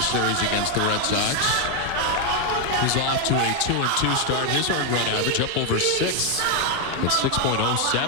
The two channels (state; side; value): different; both; correlation 0.01